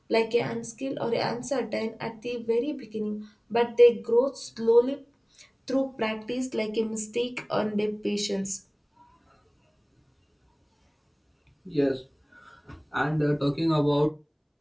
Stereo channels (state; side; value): identical; both; correlation 1.00